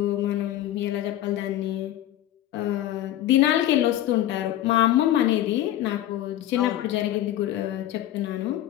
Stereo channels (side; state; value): right; quieter; 13.0 dB